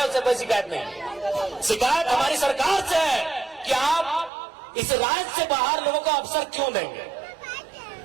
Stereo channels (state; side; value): drops out; left; at 4.3 s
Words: उससे कोई शिकायत नहीं है। शिकायत हमारी सरकार से है कि आप इस राज्य से बाहर लोगों को अवसर क्यों देंगे,